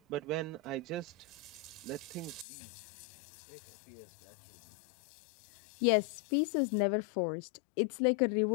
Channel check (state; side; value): drops out; right; at 2.5 s